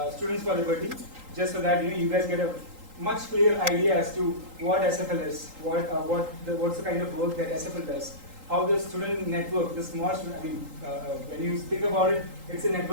Students for Liberty, just so that you guys get a much clearer idea as to what SFL is, what's the kind of work that SFL does, how the student network, the small student, when you think about it, it's a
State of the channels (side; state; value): left; late; 3.8 ms